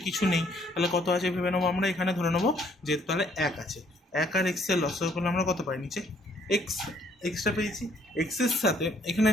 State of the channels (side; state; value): both; normal; correlation 0.65